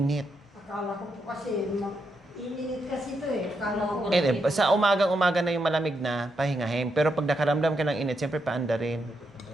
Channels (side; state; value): both; normal; correlation 0.81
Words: Akala ko po kasi, ininit kasi ito eh. Akala ko. Sa umagang-umaga na yung malamig na, pahingahin. Pero pag nakaramdam ka ng init, siyempre paanda rin.